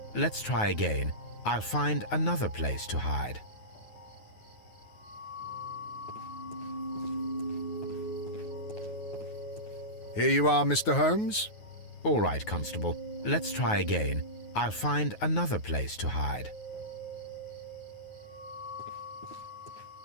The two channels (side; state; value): right; late; 9.4 ms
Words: Let's try again. I'll find another place to hide. Here you are, Mr. Holmes. All right, Constable. Let's try again. I'll find another place to hide.